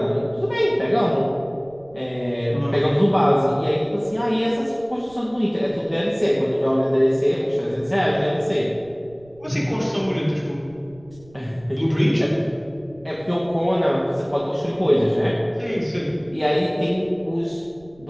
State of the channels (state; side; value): noise; right; rumble, 26 dB below the sound